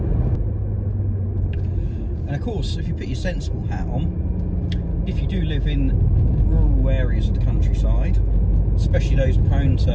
And of course, if you put your sensible hat on, if you do live in rural areas of the countryside, especially those prone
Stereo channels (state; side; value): identical; both; correlation 1.00